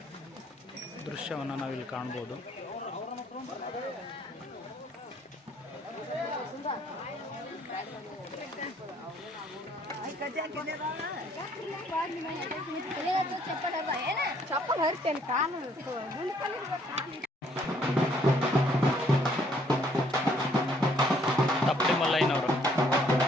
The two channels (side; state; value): both; normal; correlation 0.64